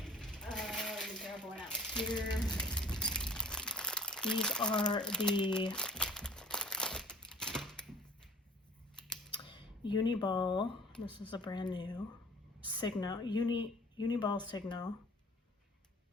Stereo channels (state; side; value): normal; both; correlation 0.49